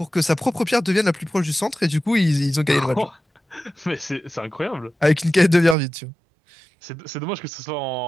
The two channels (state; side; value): drops out; left; at 5.8 s